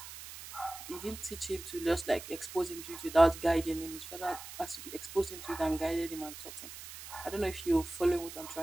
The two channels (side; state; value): right; noise; hiss, 12 dB below the sound